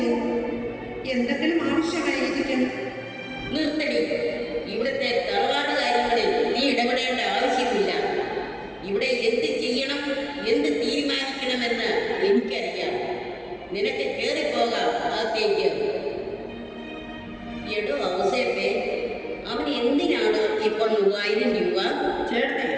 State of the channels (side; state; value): both; identical; correlation 1.00